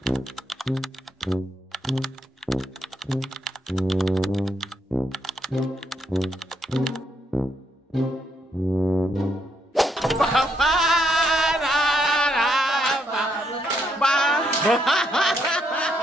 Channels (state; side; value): normal; both; correlation 0.76